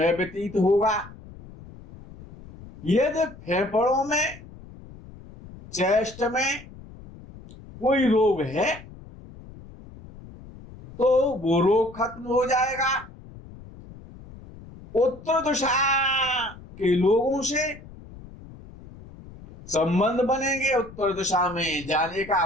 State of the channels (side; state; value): left; noise; rumble, 18 dB below the sound